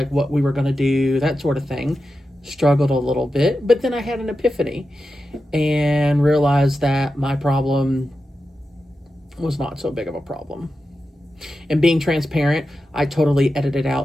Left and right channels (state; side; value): normal; both; correlation 0.91